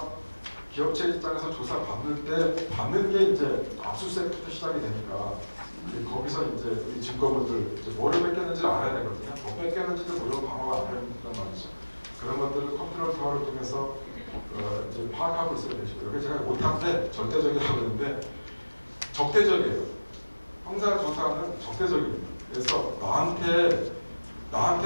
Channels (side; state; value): both; inverted; correlation -1.00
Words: 기업체 입장에서 조사 받는 게 이제 압수수색부터 시작이 되니까 거기서 이제 우리 증거물들 이제 뭐를 뺏겼는지를 알아야 되거든요. 뭐 뺏겼는지도 모르고 방어가 안 된단 말이죠. 그런 것들을 컨트롤 타워를 통해서 이제 파악하고 있어야 되시고 여기 제가 못한데 절대적이라고 그러는데 적대적이에요. 형사 조사는 적대적입니다. 그래서 나한테